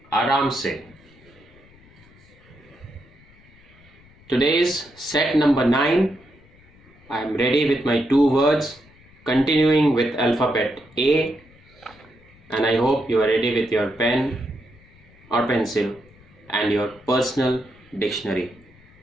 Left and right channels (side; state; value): left; noise; rumble, 27 dB below the sound